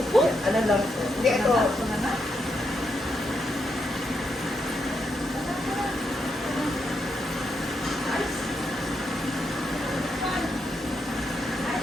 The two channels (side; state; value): both; normal; correlation 0.82